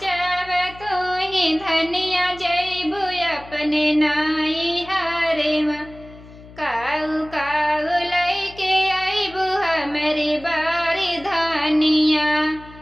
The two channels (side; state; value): left; noise; hum, 20 dB below the sound